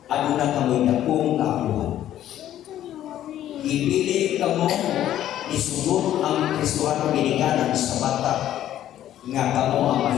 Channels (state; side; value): quieter; right; 12.0 dB